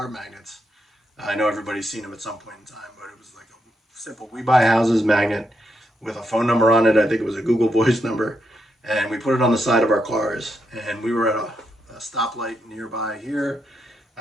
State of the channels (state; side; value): normal; both; correlation 0.82